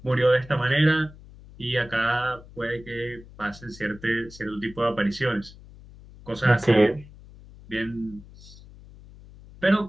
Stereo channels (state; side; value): noise; left; hum, 20 dB below the sound